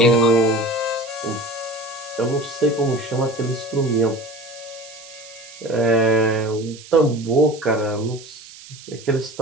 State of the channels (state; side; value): noise; right; hiss, 18 dB below the sound